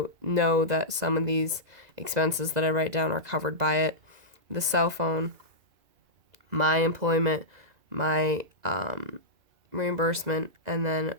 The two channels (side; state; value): left; late; 2.0 ms